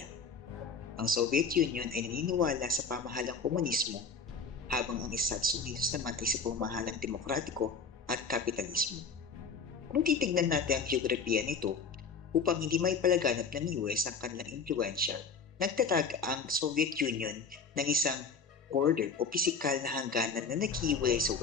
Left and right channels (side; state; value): right; quieter; 4.8 dB